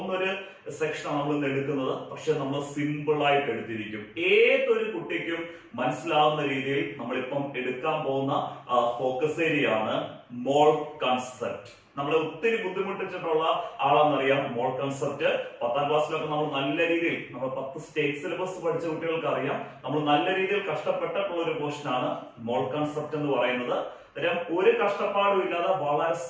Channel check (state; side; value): identical; both; correlation 1.00